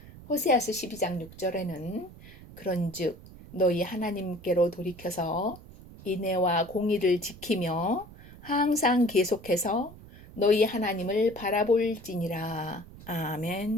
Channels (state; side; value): noise; right; rumble, 18 dB below the sound